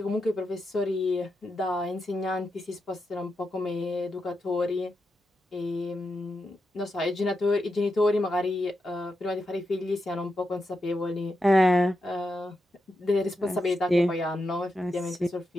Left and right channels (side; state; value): both; normal; correlation 0.87